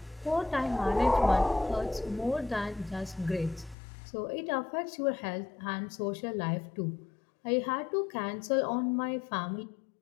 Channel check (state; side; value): drops out; right; at 3.8 s